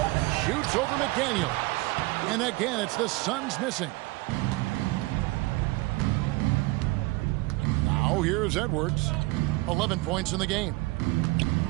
Shoots over McDaniels. And again, it's the Suns missing. Now here's Edwards. 11 points in the game.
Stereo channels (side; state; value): left; quieter; 22.4 dB